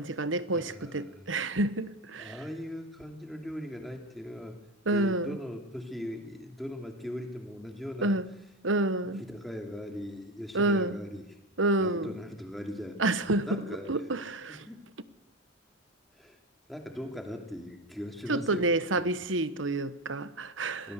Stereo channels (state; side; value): normal; both; correlation 0.20